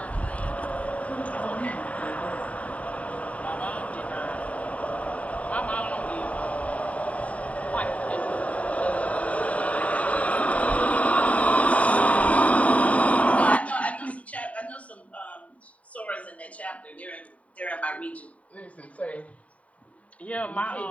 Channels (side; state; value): right; late; 0.068 ms